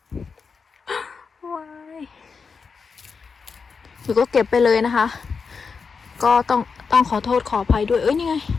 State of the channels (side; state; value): right; quieter; 5.3 dB